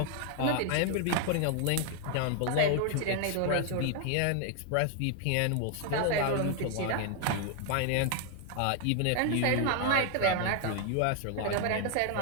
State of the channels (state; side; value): different; both; correlation 0.00